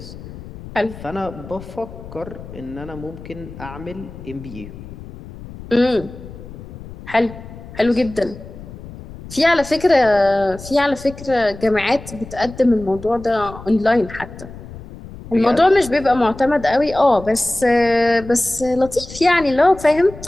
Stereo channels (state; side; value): noise; left; rumble, 15 dB below the sound